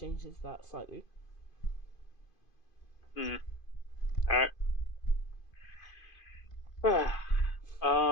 changes that slightly. Mm. All right.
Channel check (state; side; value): late; right; 2.5 ms